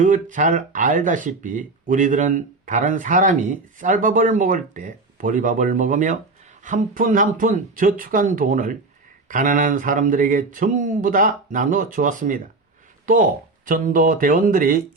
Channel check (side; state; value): left; quieter; 3.6 dB